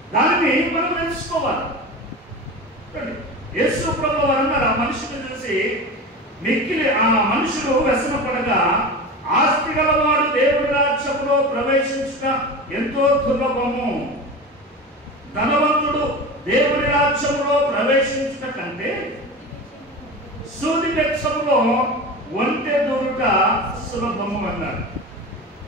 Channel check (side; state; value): both; normal; correlation 0.29